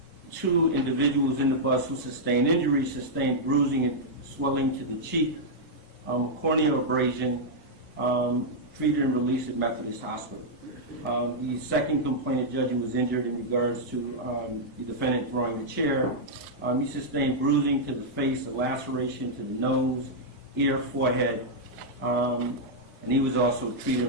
two individuals in the bus who sustained injuries sustained bruising and swelling to the cheek, corneal abrasion, treated and released at Methodist Hospital. The second complainant, Judge, who was injured in regards to the defendant throwing the chair. He sustained bruising to the face, a laceration to the nose, ear, forehead, and he was also treated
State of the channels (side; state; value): both; normal; correlation -0.06